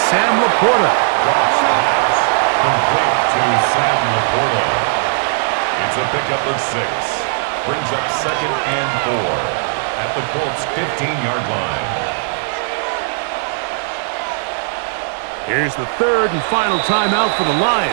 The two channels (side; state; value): left; silent; digital silence